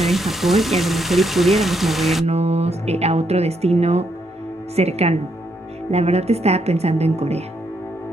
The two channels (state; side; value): normal; both; correlation 0.76